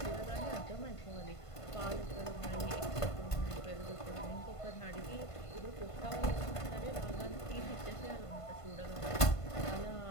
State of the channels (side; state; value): right; late; 1.5 ms